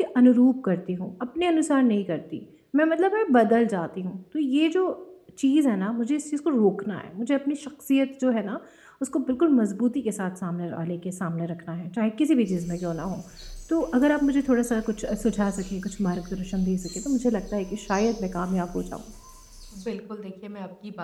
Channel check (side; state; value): both; identical; correlation 1.00